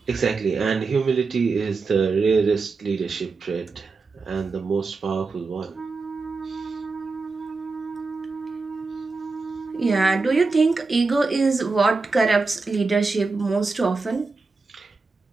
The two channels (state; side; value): quieter; left; 4.1 dB